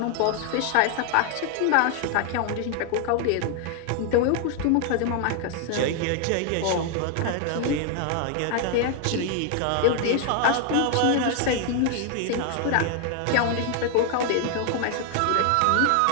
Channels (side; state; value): both; different; correlation 0.00